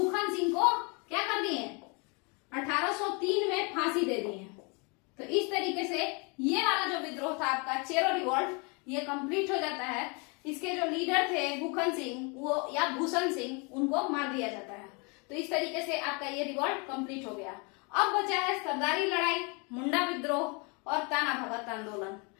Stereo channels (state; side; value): quieter; right; 32.0 dB